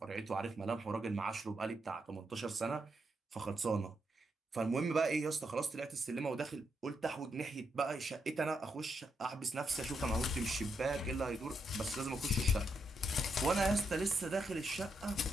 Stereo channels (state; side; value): normal; both; correlation 0.81